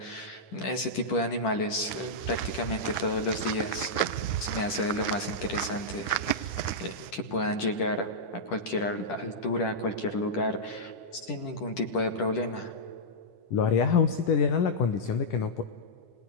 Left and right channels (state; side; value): late; right; 10 ms